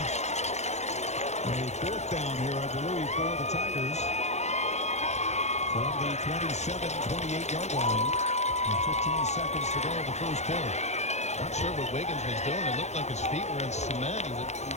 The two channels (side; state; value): right; late; 0.33 ms